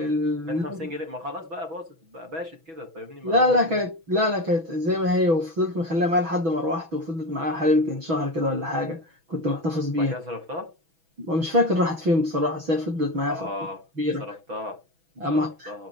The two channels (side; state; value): left; late; 6.1 ms